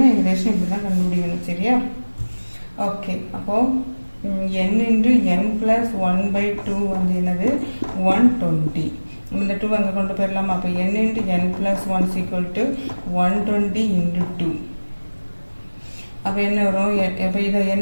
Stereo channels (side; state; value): both; inverted; correlation -1.00